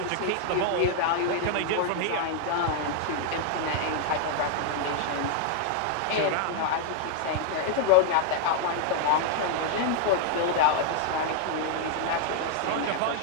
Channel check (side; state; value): both; different; correlation 0.00